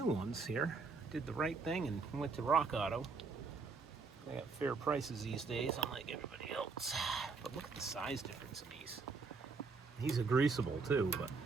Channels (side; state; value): left; quieter; 4.5 dB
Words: ones here. Did the right thing and went to Rock Auto. They got fair prices these days, unlike everybody else. But look at the size difference in these. These are greasable too, but